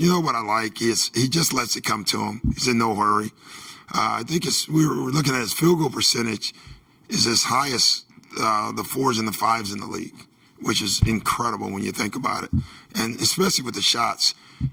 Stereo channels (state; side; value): identical; both; correlation 1.00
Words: know what I like? He just lets it come to him. He's in no hurry. I think we were looking at his field goal percentage is as high as the 4s and the 5s in the league, which is incredible when you think about it. And especially with the shots.